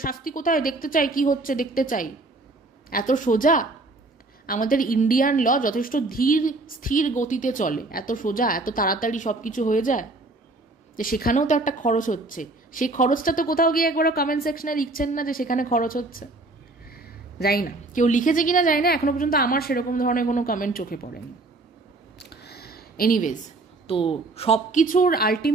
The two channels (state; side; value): quieter; left; 3.1 dB